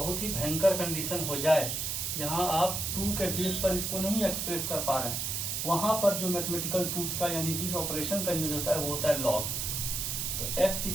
ही भयंकर कंडीशन हो जाए, जहाँ आप 2 के बेस पर इसको नहीं एक्सप्रेस कर पा रहे हैं, वहाँ पर जो मैथमेटिकल टूल्स का यानी जिस ऑपरेशन का यूज होता है वो होता है लॉग। तो x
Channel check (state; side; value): noise; right; hiss, 1 dB below the sound